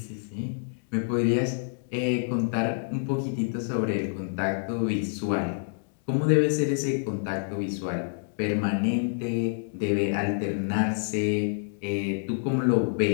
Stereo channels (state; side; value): silent; right; digital silence